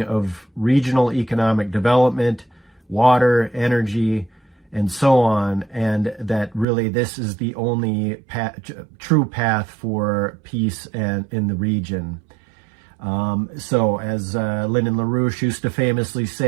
of regional economic development, water, energy, and so on, and that really this is the only true path for peace and in the region. So as Lyndon LaRouche used to famously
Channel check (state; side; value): drops out; left; at 6.7 s